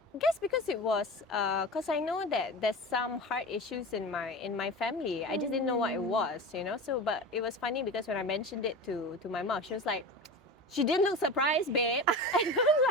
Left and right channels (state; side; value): normal; both; correlation 0.30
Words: I guess because it was, because I know that there's some heart issues in my family. I just didn't know what it was, So, but it was funny because when I mentioned it to my mom, she was like, she didn't look surprised, babe. And I'm